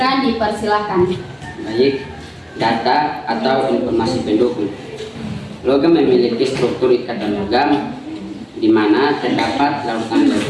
dipersilakan. Baik, data atau informasi pendukung. Logam memiliki struktur ikatan logam di mana terdapat lautan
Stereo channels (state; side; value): identical; both; correlation 1.00